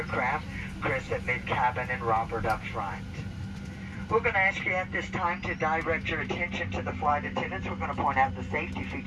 Chris at mid-cabin, and Robert up front. We're going to ask you at this time to direct your attention to the flight attendants. We're going to point out the safety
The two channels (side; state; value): both; identical; correlation 1.00